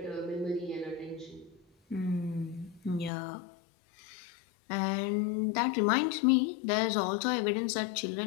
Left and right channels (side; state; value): right; drops out; at 3.1 s